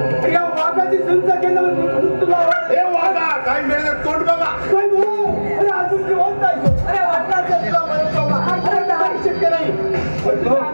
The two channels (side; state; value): both; inverted; correlation -1.00